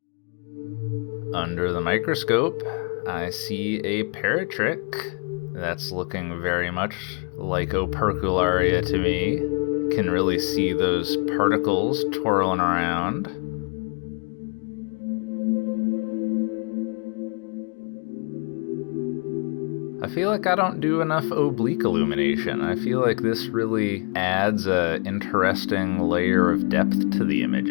Under the microscope, I see a paratrick. That's looking very much like Opercularia to me. Can really see those particles twirling around. I feel like I don't do enough oblique illumination. I feel like this really adds an interesting layer of depth to the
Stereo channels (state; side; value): quieter; right; 35.2 dB